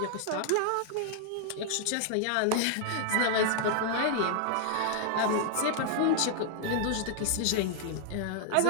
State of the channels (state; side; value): different; both; correlation 0.00